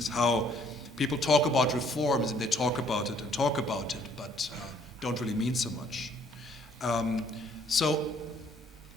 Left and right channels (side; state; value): both; normal; correlation 0.63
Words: How people talk about reforms and they talk about it, but don't really mean so much. So